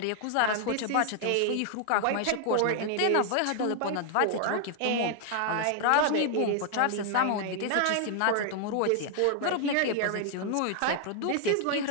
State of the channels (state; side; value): different; both; correlation 0.00